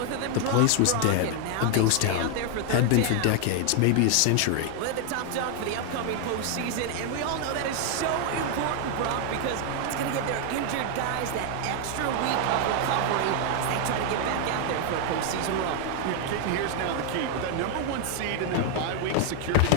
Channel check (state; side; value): different; both; correlation 0.00